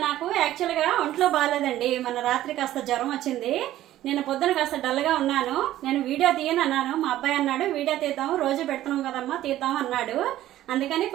నాకు యాక్చువల్గా ఒంట్లో బాగాలేదండి. మన రాత్రి కాస్త జ్వరం వచ్చింది. నేను పొద్దున కాస్త డల్గా ఉన్నాను. నేను వీడియో తీయను అన్నాను. మా అబ్బాయి అన్నాడు వీడియో తీద్దాము, రోజు పెడుతున్నాం కదమ్మా, తీద్దాం అన్నాడు. అందుకని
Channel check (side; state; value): left; quieter; 13.8 dB